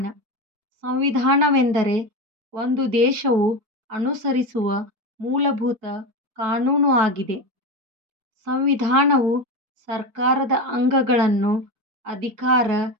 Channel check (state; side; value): late; left; 4.6 ms